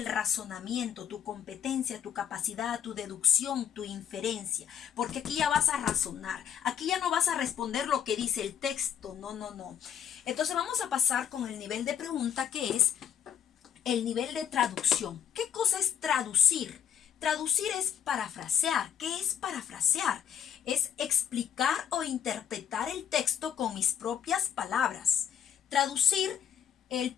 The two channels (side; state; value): right; quieter; 9.0 dB